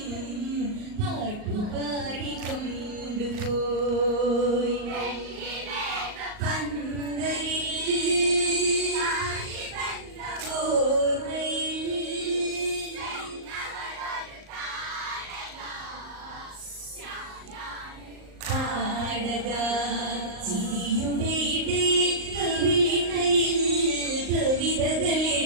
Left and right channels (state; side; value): late; left; 38 ms